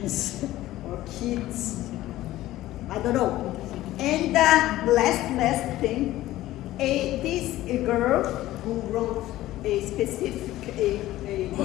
or kids. I don't know. And last thing, this girl who wrote a specific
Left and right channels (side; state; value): right; quieter; 15.5 dB